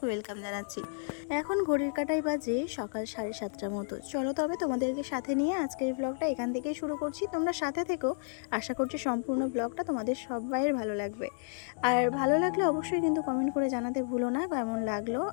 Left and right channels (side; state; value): right; silent; digital silence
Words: ওয়েলকাম জানাচ্ছি। এখন ঘড়ির কাঁটায় বাজে সকাল 7:30টার মতো। চলো তবে তোমাদেরকে সাথে নিয়ে আজকের ব্লগটা এখান থেকেই শুরু করছি। তোমরা সাথে থেকো, আশা করছি সম্পূর্ণ ব্লগটা তোমাদের সবাইয়ের ভালো লাগবে। আর ভালো লাগলে অবশ্যই কিন্তু কমেন্ট করে জানাতে ভুলো না কেমন লাগলো।